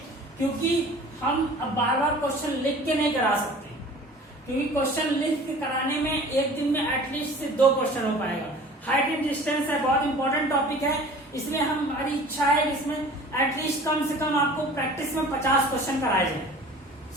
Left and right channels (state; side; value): normal; both; correlation 0.45